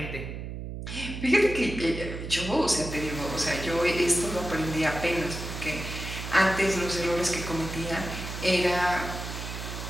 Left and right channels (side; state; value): right; noise; hum, 7 dB below the sound